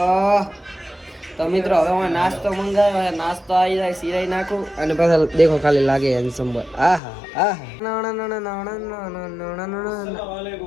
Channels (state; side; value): drops out; right; at 7.0 s